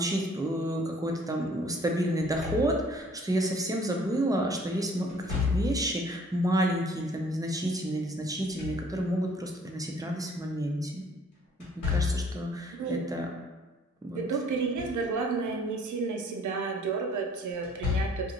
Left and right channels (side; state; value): both; normal; correlation 0.57